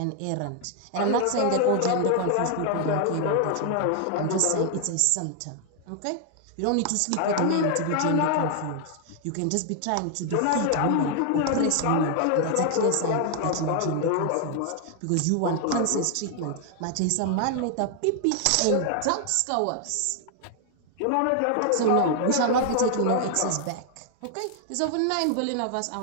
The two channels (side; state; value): both; different; correlation 0.00